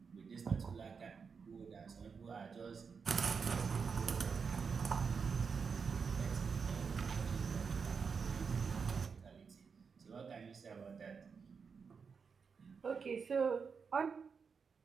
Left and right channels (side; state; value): left; quieter; 5.7 dB